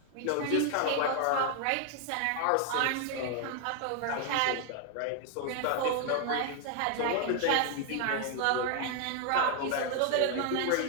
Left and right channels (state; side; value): different; both; correlation 0.00